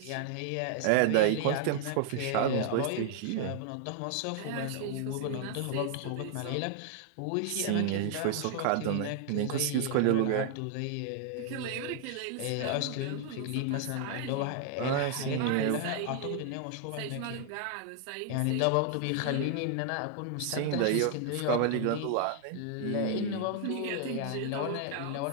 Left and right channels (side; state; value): both; different; correlation 0.00